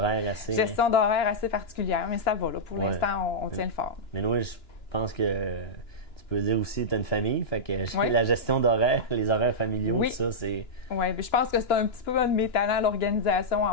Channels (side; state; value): right; late; 2.9 ms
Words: assez... gestion d'horaire assez particulière, mais ça va, là. Pour Ouais. l'instant, on tient le fort. Mais oui, je pense que tu peux dire aussi que tu as une famille. Fait que Oui. la gestion d'horaire, les horaires familiaux, Oui. tout ça, c'est... Oui, je pense que c'est un petit peu un de mes talents, l'organisation